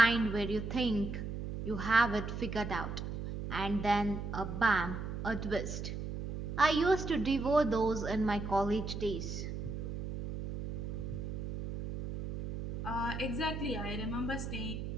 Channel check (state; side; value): noise; right; hum, 5 dB below the sound